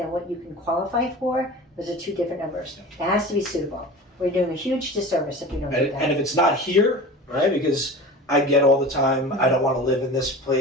what you can qualify for. Those are 2 different numbers. It has to be suitable. We're doing a huge disservice if you don't do that. And if it's not here, right, because I get all the time, I don't want to live in this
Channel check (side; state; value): both; normal; correlation 0.35